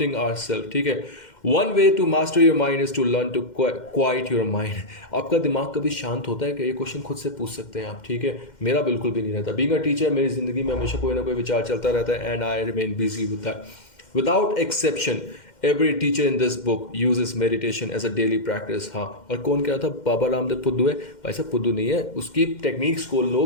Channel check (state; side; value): late; right; 2.1 ms